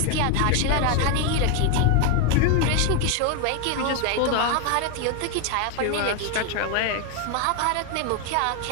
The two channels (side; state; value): both; different; correlation 0.01